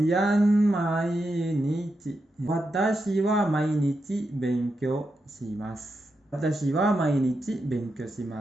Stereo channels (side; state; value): both; normal; correlation 0.86